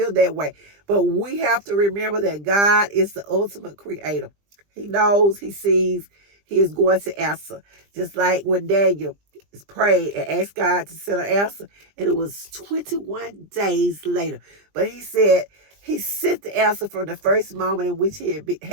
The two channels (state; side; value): late; left; 20 ms